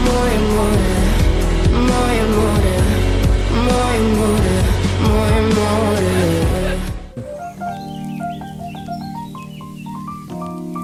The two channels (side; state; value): both; identical; correlation 1.00